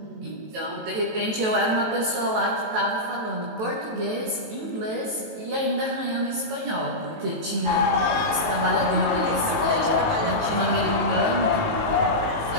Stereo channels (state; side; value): late; left; 18 ms